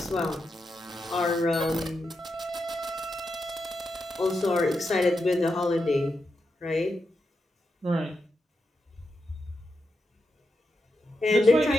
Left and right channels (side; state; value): both; normal; correlation 0.86